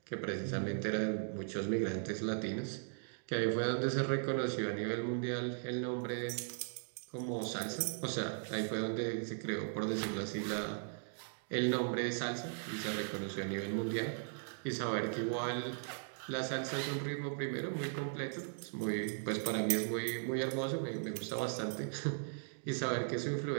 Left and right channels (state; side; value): silent; left; digital silence